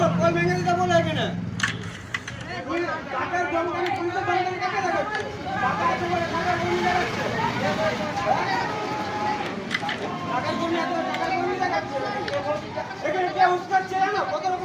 কল ভেঙে দিতে বলো এখানে। টাকার জমকানি, পুলিশের জমকানি কাকে দেখাচ্ছে? টাকা আছে বলে টাকার কর্মী দেখাচ্ছে। টাকার কর্মী আছে বলে টাকার কর্মী দেখাচ্ছে। এখানে কে উস্কাচ্ছে জানো? কত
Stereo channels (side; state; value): both; identical; correlation 1.00